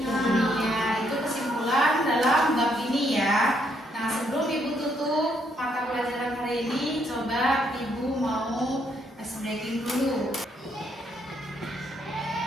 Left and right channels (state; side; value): normal; both; correlation 0.73